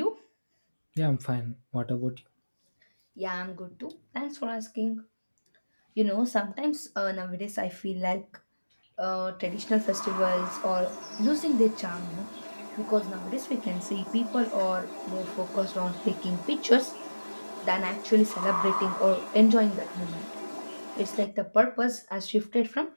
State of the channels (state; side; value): inverted; both; correlation -1.00